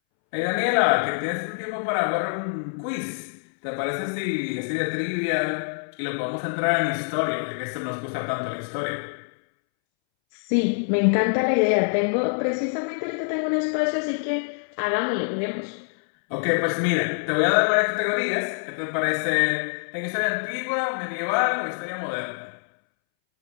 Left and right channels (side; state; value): right; silent; 62 dB below the other